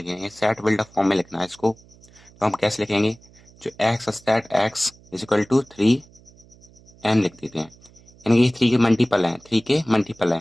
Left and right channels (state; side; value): noise; right; hum, 26 dB below the sound